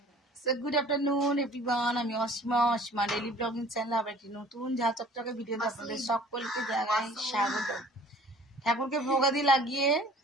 সো গুড আফটারনুন এভরিওয়ান, আমি অসীমা ডেইলি ব্লগিং চ্যানেল আবার একটি নতুন ঝাঁ চকচকে ভিডিওতে আপনাদের সকলকে জানাই স্বাগত। ঠাকুরকে ভোগাদি লাগিয়ে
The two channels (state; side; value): normal; both; correlation 0.50